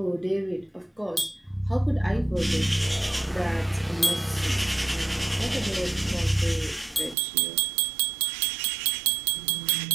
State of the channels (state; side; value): drops out; left; at 7.2 s